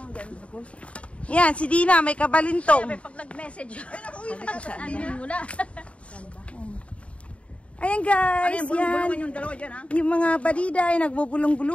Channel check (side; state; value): right; late; 0.063 ms